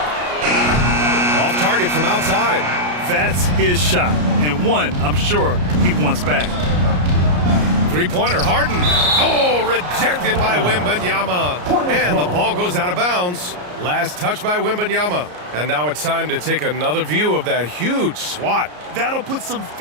Off target from outside. That's his shot, and one I'm sure he wants back. Three-pointer, Harden. Oh, rejected by Wembanyama. And the ball goes out of bounds. Last touch by Wembanyama. And now it's time to take another view of that huge swat. That'll put some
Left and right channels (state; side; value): late; left; 33 ms